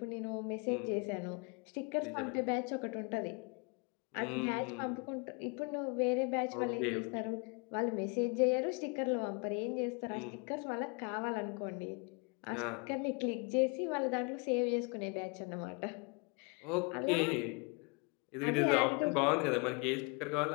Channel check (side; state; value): right; quieter; 32.7 dB